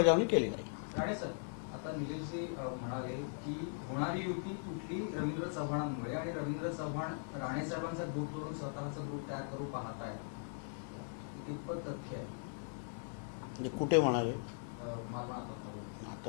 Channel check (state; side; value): silent; right; 51 dB below the other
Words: केली जाईल. राणे सर, आता निलेशजी म्हणाले की होणारी युती कुठली रवींद्र चव्हाणांमुळे आणि रवींद्र चव्हाण राणे साहेबांचा ग्रुप सोडून स्वतःचा ग्रुप तयार करू पाहत आहे, कितपत तथ्य आहे? म्हणजे कुठे म्हणाले? मला आता